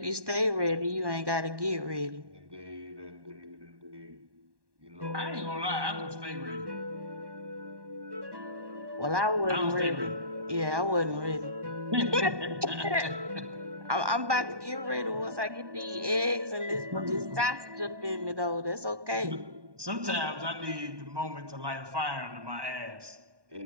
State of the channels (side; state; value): left; late; 1.2 ms